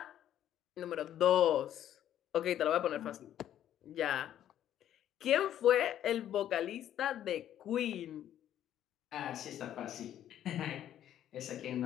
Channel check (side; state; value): right; quieter; 11.2 dB